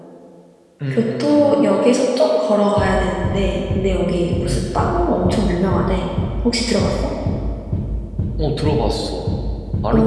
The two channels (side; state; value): both; identical; correlation 1.00